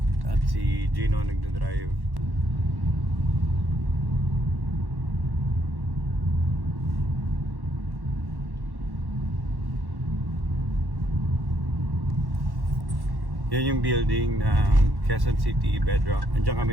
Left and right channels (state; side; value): late; left; 1.1 ms